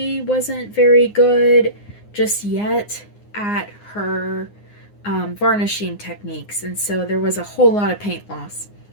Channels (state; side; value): late; right; 9.7 ms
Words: wasn't very good just yet at her varnishing techniques. And so there was a whole lot of paint loss.